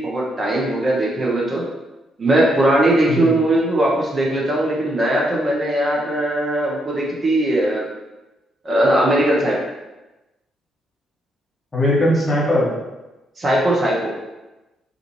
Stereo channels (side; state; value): both; normal; correlation 0.76